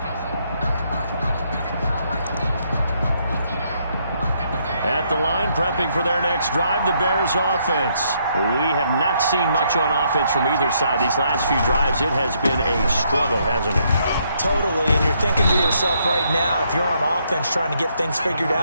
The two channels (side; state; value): both; inverted; correlation -0.73